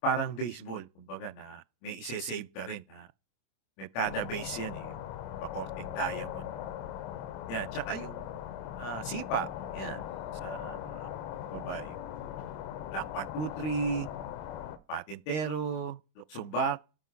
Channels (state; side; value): late; right; 26 ms